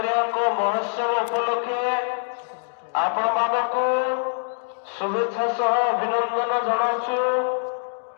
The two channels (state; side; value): silent; right; digital silence